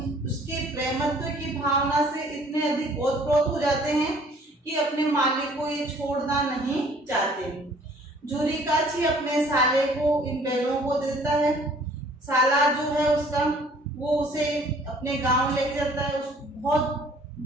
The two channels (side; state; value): both; normal; correlation 0.55